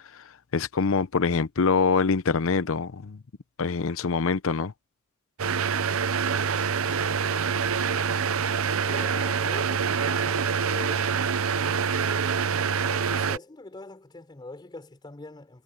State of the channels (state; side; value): normal; both; correlation 0.02